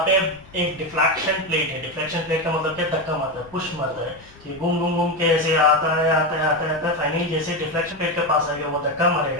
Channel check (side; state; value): left; noise; rumble, 24 dB below the sound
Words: पे एक डिफ्लेक्शन प्लेट है। डिफ्लेक्शन प्लेट का मतलब क्या? धक्का मारता है, पुश मारता है। तो ये घूम घूम घूम के ऐसे आता है आता है आता है आता है, फाइनली जैसे डिफ्लेक्शन प्लेट के पास आएगा वो धक्का